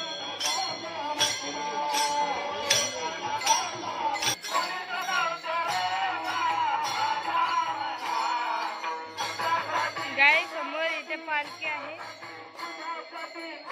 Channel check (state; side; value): identical; both; correlation 1.00